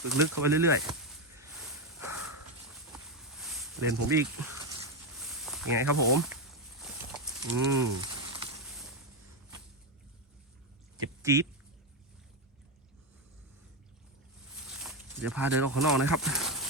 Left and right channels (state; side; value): normal; both; correlation 0.09